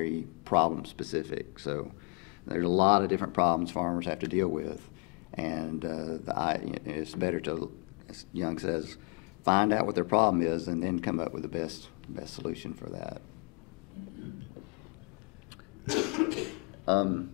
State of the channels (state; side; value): quieter; right; 35.2 dB